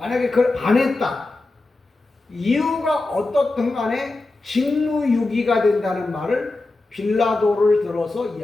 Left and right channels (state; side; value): quieter; right; 3.1 dB